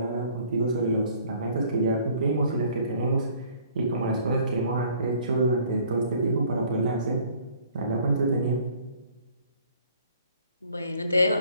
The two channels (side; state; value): both; inverted; correlation -0.57